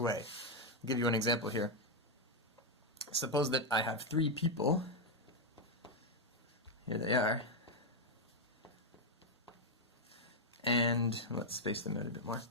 I'll give you an example here. Suppose that I have 3 people. Here they are. And let's space them out a bit more.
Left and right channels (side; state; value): both; normal; correlation 0.02